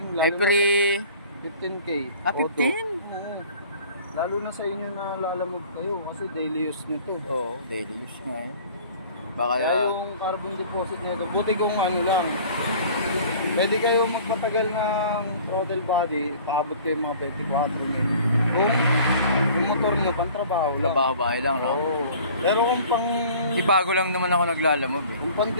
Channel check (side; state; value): both; inverted; correlation -0.47